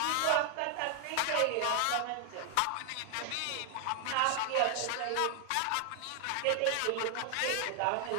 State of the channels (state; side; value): different; both; correlation 0.00